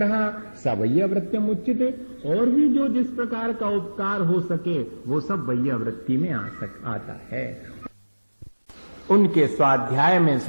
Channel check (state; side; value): inverted; both; correlation -1.00